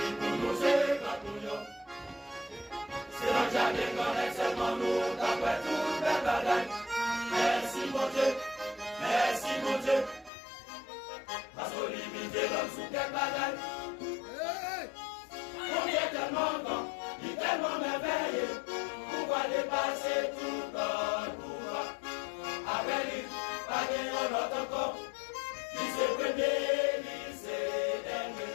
pour nous c'est pas tout nous. C'est dans le jardin qu'on est seulement nous, d'après tout le bagaille. Merci mon Dieu, merci mon Dieu. Parce qu'on limite l'homme sous quel bagaille. On est tellement grand, il est tellement merveilleux. Pouvoir dépasser tout notre pouvoir. Avec lui, pas gagner notre encore. Lycée premier, lycée dernier.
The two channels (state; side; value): drops out; right; at 10.3 s